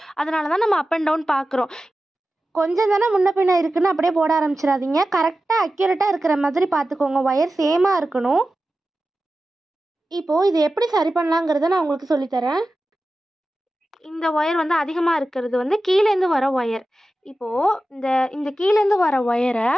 அதனால தான் நம்ம அப் அண்ட் டவுன் பார்க்குறோம். கொஞ்சம் தானே முன்ன பின்ன இருக்குன்னு அப்படியே போட ஆரம்பிச்சிடாதீங்க. கரெக்டாக அக்யூரேட்டாக இருக்கிற மாதிரி பார்த்துக்கோங்க. ஒயர் சேமாக இருக்கணும். இப்போது இது எப்படி சரி பண்ணலாங்கிறத நான் உங்களுக்கு சொல்லித்தரேன். இந்த ஒயர் வந்து அதிகமாக இருக்கிறது வந்து கீழேருந்து வர ஒயர். இப்போது இந்த கீழேருந்து வர ஒயரை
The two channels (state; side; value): normal; both; correlation 0.94